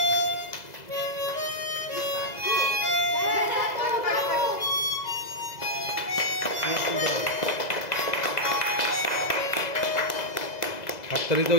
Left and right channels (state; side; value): late; right; 2.0 ms